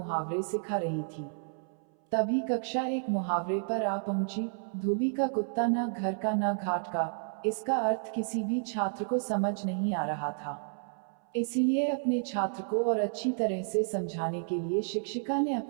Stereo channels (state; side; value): silent; left; 57 dB below the other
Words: सिखा रही थी। तभी कक्षा एक मुहावरे पर आ पहुंची। धोबी का कुत्ता न घर का न घाट का। इसका अर्थ किसी भी छात्र को समझ नहीं आ रहा था। इसलिए अपने छात्र को और अच्छी तरह से समझाने के लिए शिक्षिका ने